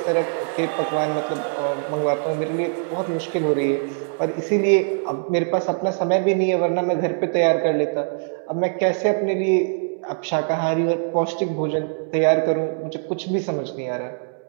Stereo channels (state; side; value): silent; left; 64 dB below the other